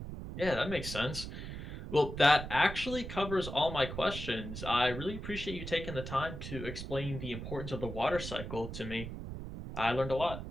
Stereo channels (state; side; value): noise; right; rumble, 8 dB below the sound